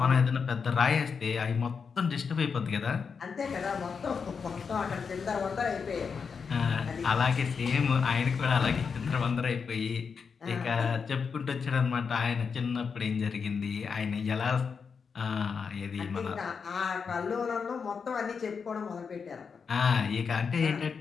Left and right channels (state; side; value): quieter; right; 5.8 dB